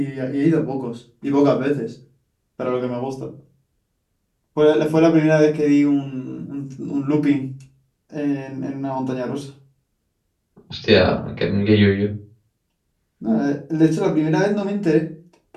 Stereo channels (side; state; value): both; identical; correlation 1.00